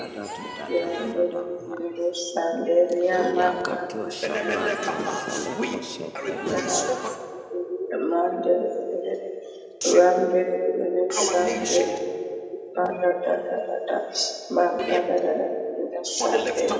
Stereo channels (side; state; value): both; identical; correlation 1.00